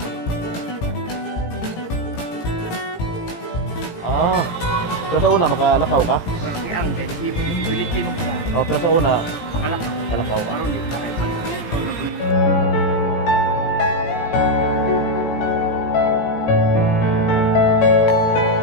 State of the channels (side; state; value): right; late; 17 ms